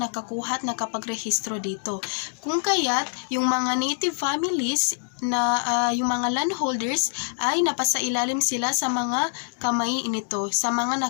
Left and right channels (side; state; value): right; silent; digital silence